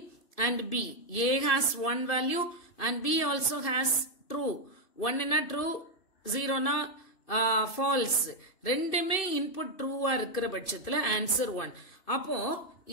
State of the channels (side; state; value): right; late; 2.6 ms